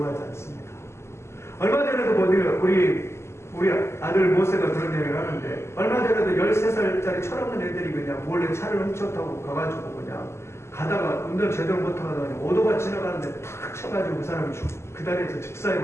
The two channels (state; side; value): late; right; 0.13 ms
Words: 않습니다. 얼마 전에도 우리 아들 모세가 그런 얘기를 하는데, 얼마 전에도 13살짜리 철없는 애들이 그냥 몰래 차를 훔쳐 타고 가가지고 그냥 가다가 운전 제대로 못하다가 오토바이 지나가는데 탁 쳐가지고 그 사람이 그 다리에서